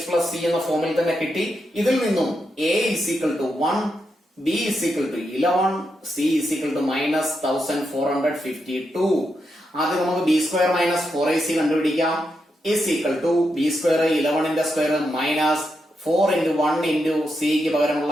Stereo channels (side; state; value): both; normal; correlation 0.84